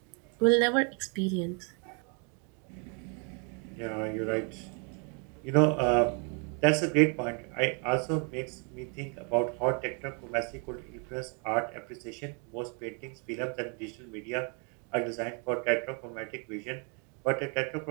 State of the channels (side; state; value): left; quieter; 37.2 dB